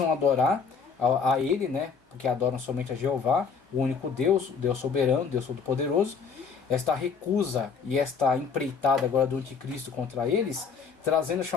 adorar a ele, né, porque adoram somente a Jeová, o único Deus, o Deus soberano, Deus todo-poderoso. Esta recusa e esta empreitada agora do anticristo contra eles, trazendo a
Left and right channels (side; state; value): right; quieter; 5.7 dB